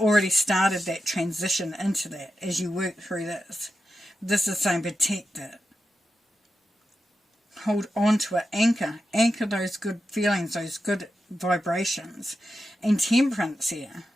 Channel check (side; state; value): both; normal; correlation 0.90